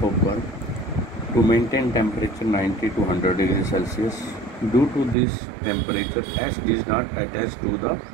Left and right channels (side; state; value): left; drops out; at 5.2 s